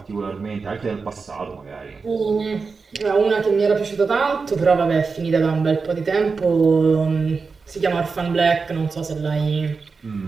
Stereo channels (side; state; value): left; quieter; 4.7 dB